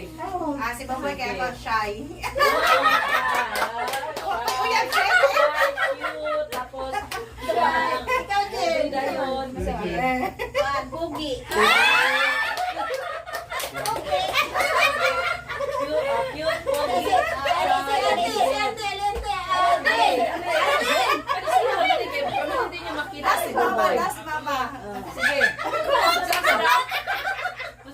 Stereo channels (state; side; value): identical; both; correlation 1.00